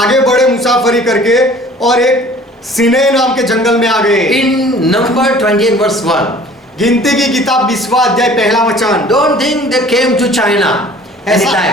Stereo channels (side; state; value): both; normal; correlation 0.49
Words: बढ़े मुसाफरी करके और एक सिने नाम के जंगल में आ गए। In number 20 and verse 1. गिनती की किताब 20वां अध्याय पहला वचन। Don't think they came to China